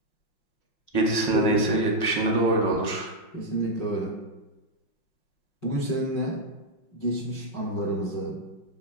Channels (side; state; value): right; late; 5.6 ms